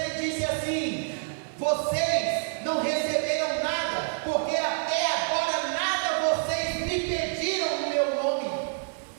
disse assim: vocês não receberam nada, porque até agora nada vocês me pediram no meu nome.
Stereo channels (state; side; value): silent; left; digital silence